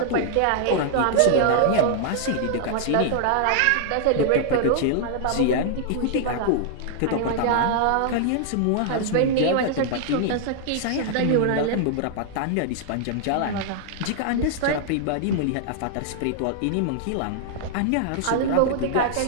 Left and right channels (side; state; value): both; different; correlation -0.01